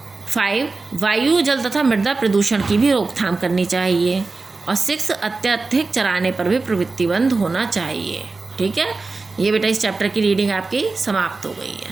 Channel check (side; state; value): left; quieter; 3.8 dB